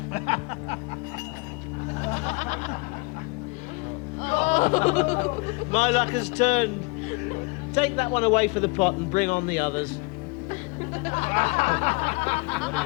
My luck has turned. Take that one away for the pot and bring on the others.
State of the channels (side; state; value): right; quieter; 27.9 dB